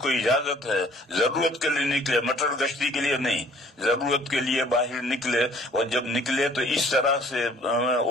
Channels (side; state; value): both; normal; correlation 0.56